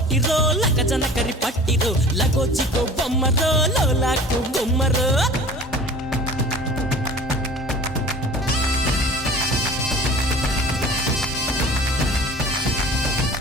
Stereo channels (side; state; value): both; normal; correlation 0.43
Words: లగజన కరి పట్టిరో లగోజిగో బొమ్మరో లోలాకు గుమ్మరో